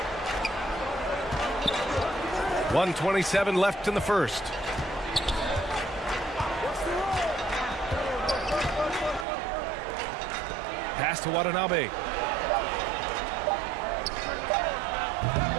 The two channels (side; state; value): left; drops out; at 9.2 s